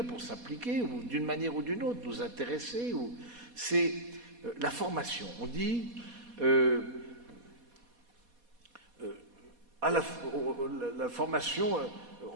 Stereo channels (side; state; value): left; late; 4.2 ms